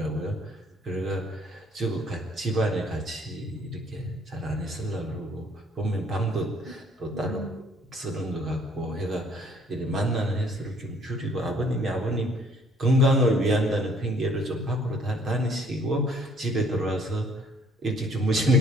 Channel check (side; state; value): both; normal; correlation 0.61